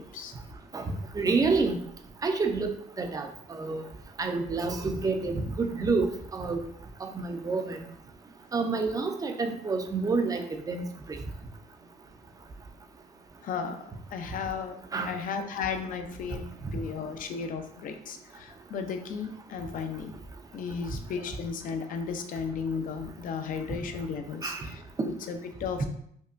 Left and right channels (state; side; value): normal; both; correlation 0.60